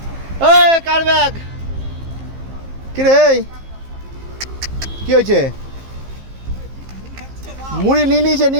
এই কার ব্যাগ? কি রে, কি হয়েছে? মুড়ি নিয়ে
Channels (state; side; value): late; left; 15 ms